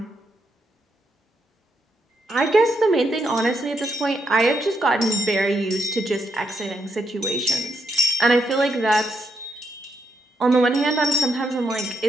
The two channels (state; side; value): normal; both; correlation 0.79